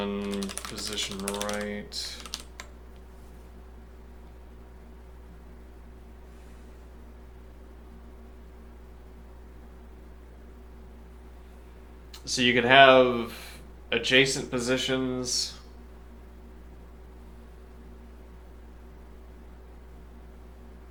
position right. So you could have adjacent positions.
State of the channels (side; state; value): both; identical; correlation 1.00